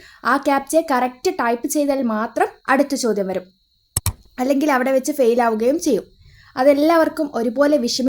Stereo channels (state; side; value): identical; both; correlation 1.00